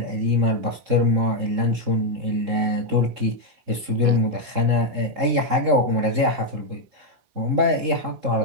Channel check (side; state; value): left; late; 3.7 ms